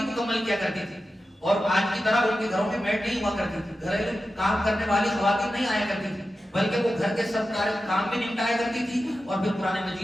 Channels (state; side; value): normal; both; correlation 0.92